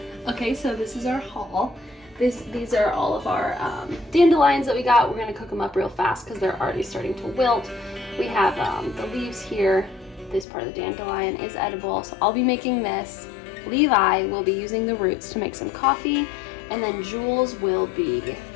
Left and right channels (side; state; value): right; drops out; at 10.5 s